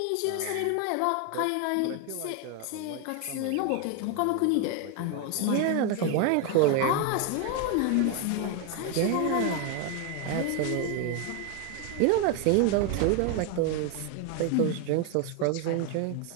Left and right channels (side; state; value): both; different; correlation 0.01